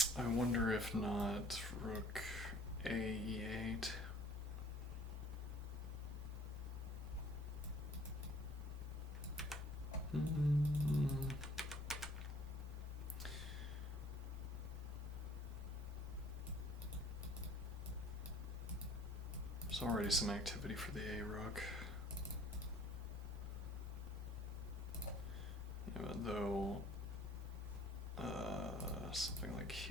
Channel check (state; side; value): normal; both; correlation 0.55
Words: I wonder if not rook a8. There's already some activity for the a rook. Yeah, though something like,